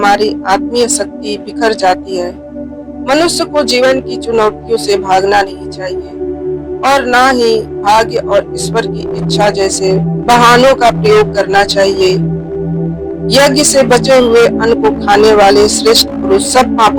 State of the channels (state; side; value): identical; both; correlation 1.00